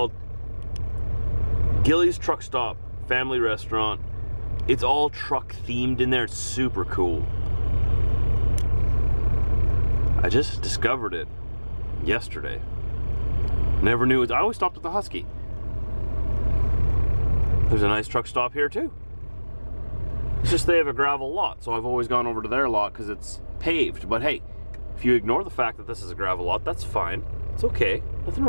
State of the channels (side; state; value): both; inverted; correlation -1.00